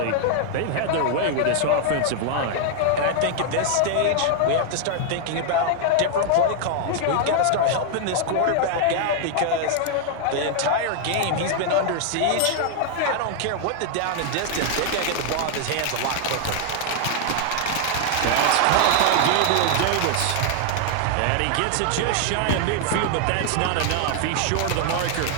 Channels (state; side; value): different; both; correlation 0.00